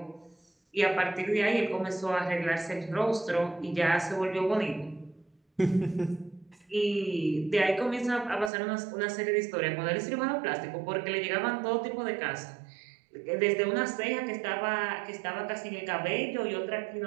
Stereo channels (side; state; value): left; drops out; at 8.5 s